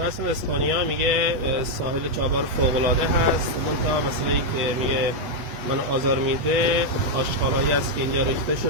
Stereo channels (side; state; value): left; late; 8.4 ms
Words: هستن از اسپانیا، میگه ساحل چابهار فوق‌العاده هست. منتها مسئله‌ای که میگه من آزار میده آشغالایی است که اینجا ریخته